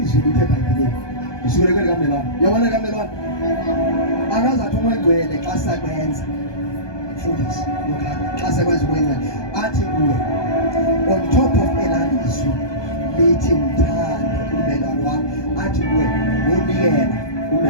lithe bhayibhelini usukeleke likamelwane yabona likamelwane akazathi umongcwele xa sakwenza mfundisi lokhana xa sakwenza umongcwele athi kuwe on top of elalizwi lithi mthande umelwane wakho athi kuwe wonikela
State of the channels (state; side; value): late; right; 1.2 ms